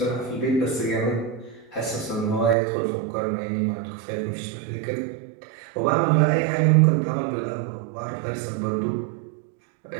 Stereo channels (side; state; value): left; drops out; at 2.6 s